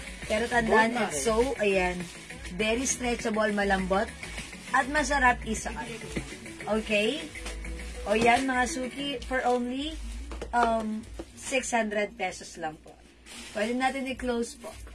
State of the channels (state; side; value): identical; both; correlation 1.00